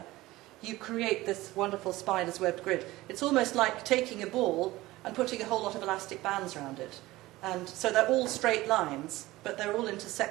you create this wonderful spider's webbed grid. It's almost like taking a ball and putting a whole lot of elastic bands around it. And so they're all straight lines, but they're all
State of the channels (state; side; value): quieter; left; 18.3 dB